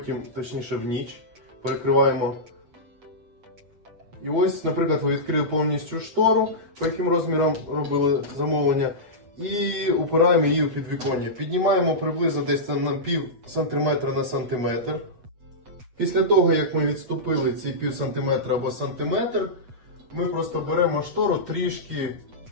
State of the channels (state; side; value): late; left; 8.1 ms